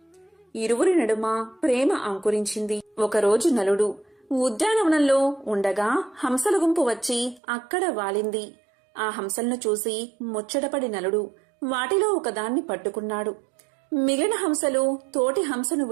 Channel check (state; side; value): drops out; left; at 7.4 s